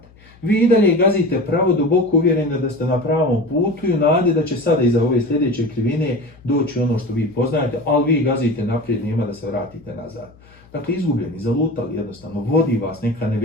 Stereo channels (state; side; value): noise; left; hum, 26 dB below the sound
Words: vi i dalje gazite pravo, duboko uvjereni da ste na pravom putu i u nadi da će sada iza ove sljedeće krivine doći ono što vi poznajete, ali vi gazite naprijed, nema da se vratite nazad. Dakle, izgubljeni, zalutali jednostavno, vodi vas neka